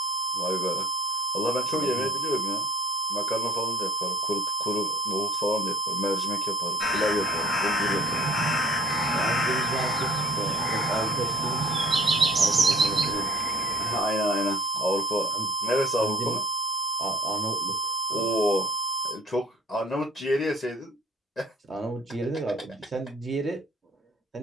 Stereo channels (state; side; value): normal; both; correlation 0.51